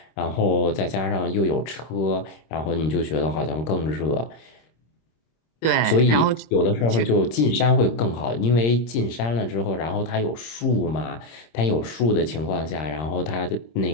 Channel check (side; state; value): right; late; 26 ms